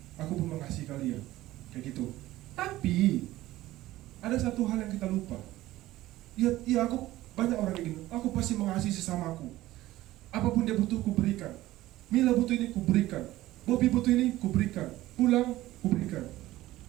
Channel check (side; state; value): left; quieter; 16.2 dB